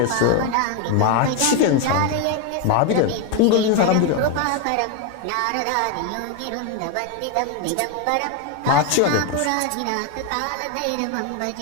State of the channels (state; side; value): different; both; correlation 0.02